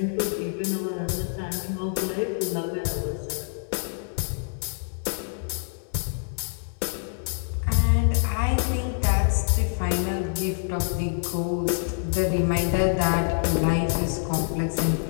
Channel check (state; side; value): silent; right; 61 dB below the other